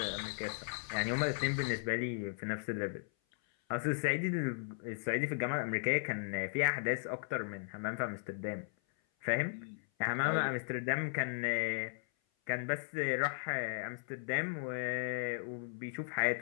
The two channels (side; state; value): right; silent; 53 dB below the other